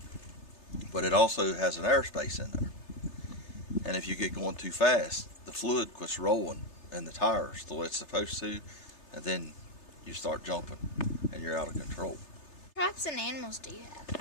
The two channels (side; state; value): right; late; 3.3 ms